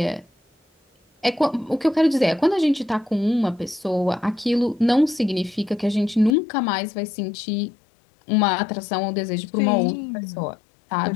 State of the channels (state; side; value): drops out; right; at 6.4 s